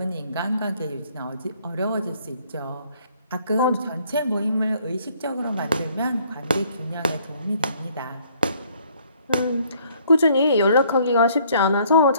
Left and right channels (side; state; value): both; inverted; correlation -0.63